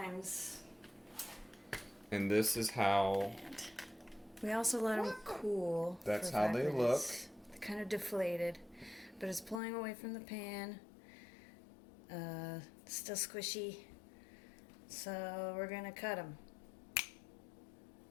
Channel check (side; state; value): right; drops out; at 9.6 s